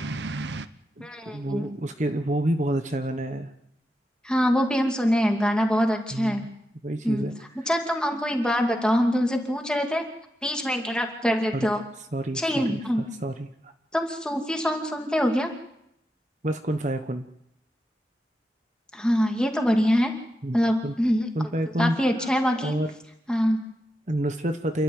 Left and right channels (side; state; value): both; normal; correlation 0.87